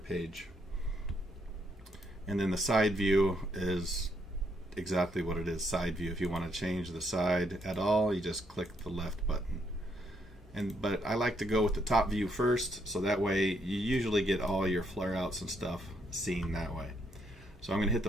And then the side view is exactly what it is, side view. If you want to change the side at all, you just click the left button. But I like to go with the top view first, so that way you usually get all your flare outs and stuff seen that way. So I'm going to hit the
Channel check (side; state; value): both; normal; correlation 0.74